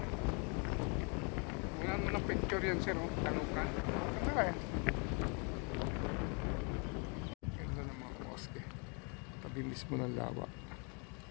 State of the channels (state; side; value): quieter; right; 35.0 dB